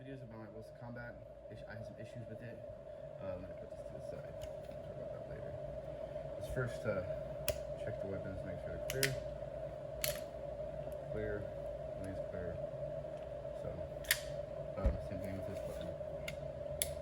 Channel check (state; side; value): identical; both; correlation 1.00